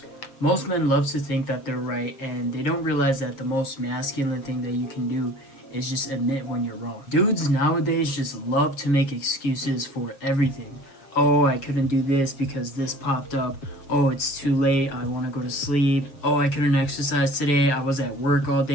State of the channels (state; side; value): late; right; 7.4 ms